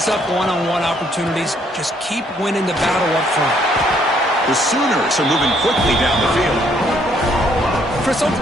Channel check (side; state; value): both; normal; correlation 0.67